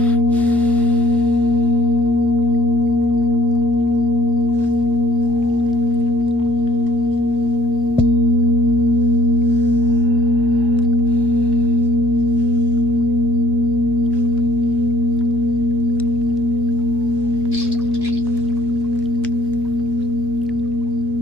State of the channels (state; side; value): normal; both; correlation 0.61